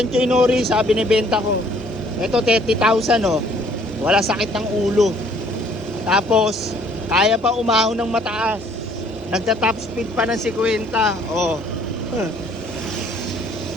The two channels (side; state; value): both; normal; correlation 0.60